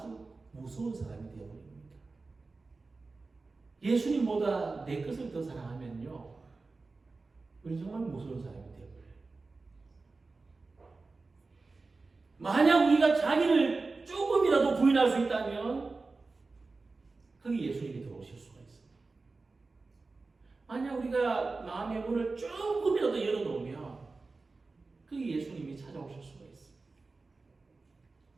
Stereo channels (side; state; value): left; quieter; 3.8 dB